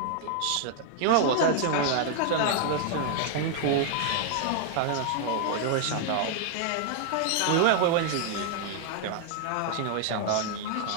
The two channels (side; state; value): both; different; correlation 0.00